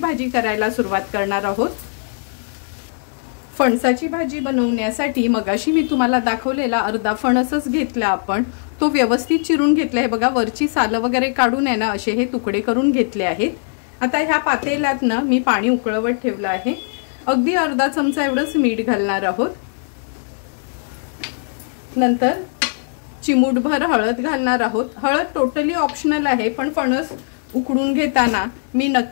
करायला सुरुवात करणार आहोत। फणसाची भाजी बनवण्यासाठी मगाशी मी तुम्हाला दाखवलेला अर्धा फणसच घेतला आपण, तो व्यवस्थित चिरून घेतला आहे। बघा, वरची सालं वगैरे काढून आहे ना असे हे तुकडे करून घेतले आहेत। आता ह्या पातेल्यात ना मी पाणी उकळवत ठेवलं आहे। अगदी अर्धा चमचा एवढंच मीठ घालणार आहोत। नंतर चिमूटभर हळद घालणार आहोत। हळद टोटली ऑप्शनल आहे, पण फणस उकडून घेताना मी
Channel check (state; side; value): silent; right; 64 dB below the other